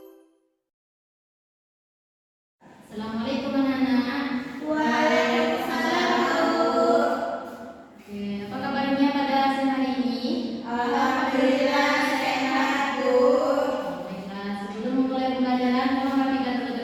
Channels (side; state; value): both; identical; correlation 1.00